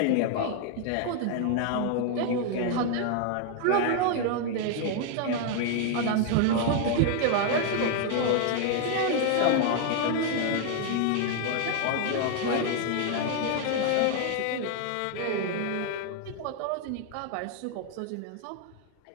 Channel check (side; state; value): both; different; correlation 0.00